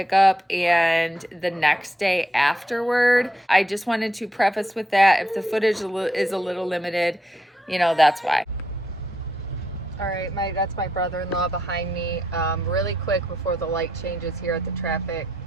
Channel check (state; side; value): normal; both; correlation 0.79